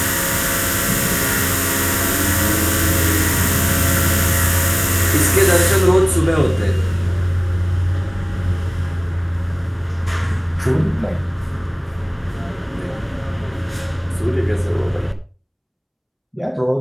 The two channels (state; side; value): identical; both; correlation 1.00